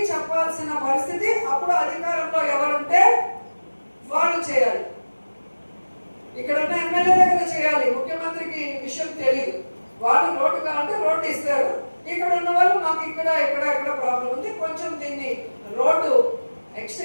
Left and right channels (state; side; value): inverted; both; correlation -1.00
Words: చెప్పాల్సిన పరిస్థితి అప్పుడు అధికారంలో ఎవరుంటే వాళ్ళు చేయాలి. ఇక్కడ ఉన్న ఎమ్మెల్యే దగ్గర చేయాలి, ముఖ్యమంత్రికి విషయం తెలియదు. వాళ్ళు రోడ్డు కావాలంటే రోడ్డు ఇస్తారు, ఇక్కడ ఉన్న వాళ్ళు మాకు ఇక్కడ ప్రాబ్లం ఉంది, కొంచెం దీన్ని రోడ్డు